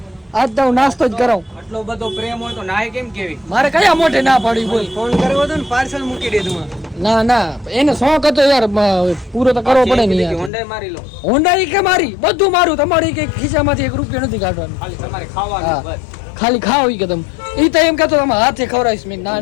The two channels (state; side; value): drops out; right; at 10.5 s